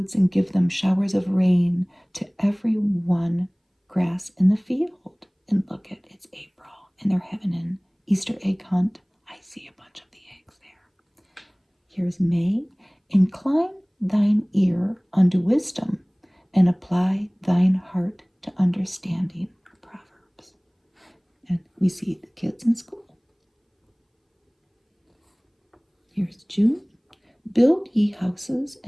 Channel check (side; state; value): both; identical; correlation 1.00